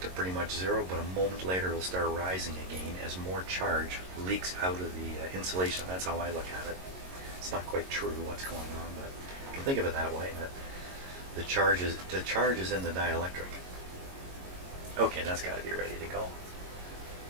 pretty much zero, but a moment later it'll start rising again as more charge leaks out of the insulation. That's how I look at it. It's not quite true what's going on, but you can think of it that way, that the charge is in the dielectric. Okay, that's got to be ready to go.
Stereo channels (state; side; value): late; left; 22 ms